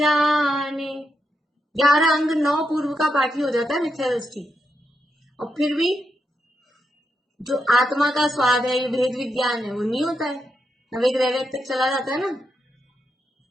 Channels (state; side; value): normal; both; correlation 0.84